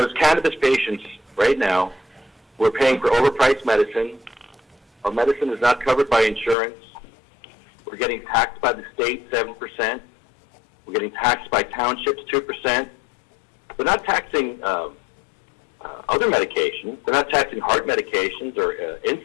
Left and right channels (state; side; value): drops out; right; at 6.6 s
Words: cannabis patients, right now, we're paying for overpriced medicine. Our medicine is not covered by insurance. We're getting taxed by the state 7%. We're getting taxed by townships 2%. They're not taxing other medications. They're not taxing heart medications or